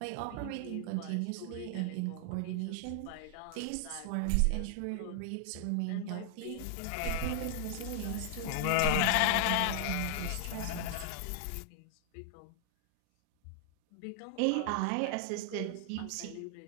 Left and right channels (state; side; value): different; both; correlation 0.00